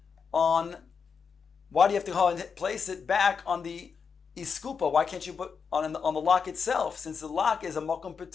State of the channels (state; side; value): quieter; right; 5.9 dB